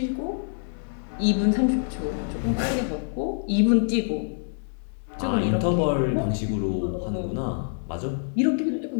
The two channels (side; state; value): right; silent; digital silence